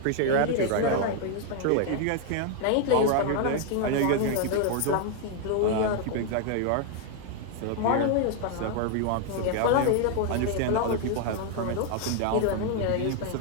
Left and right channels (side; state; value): both; different; correlation 0.00